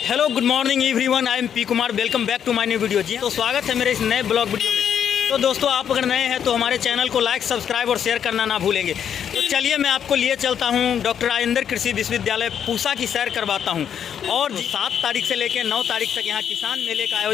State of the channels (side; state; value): right; quieter; 8.6 dB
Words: hello good morning everyone, I am P Kumar. Welcome back to my new video. जी तो स्वागत है मेरे इस नए ब्लॉग वीडियो में। तो दोस्तों, आप अगर नए हैं तो हमारे चैनल को लाइक, सब्सक्राइब और शेयर करना ना भूलेंगे। तो चलिए मैं आपको लिए चलता हूँ डॉक्टर राजेंद्र कृषि विश्वविद्यालय पूसा की सैर करवाता हूँ। और 7 तारीख से लेकर 9 तारीख तक यहाँ किसान मेले का